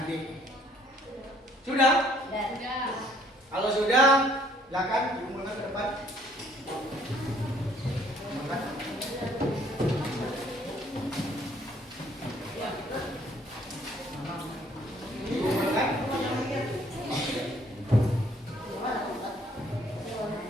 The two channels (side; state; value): both; normal; correlation 0.62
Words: nanti. Sudah? Kalau sudah, silakan dimulai ke depan.